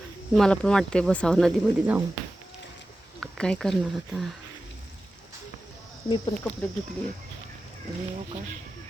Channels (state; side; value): normal; both; correlation 0.94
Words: मला पण वाटते बसावं नदीमध्ये जाऊन. काय करणार आता. मी पण कपडे धुतले आणि का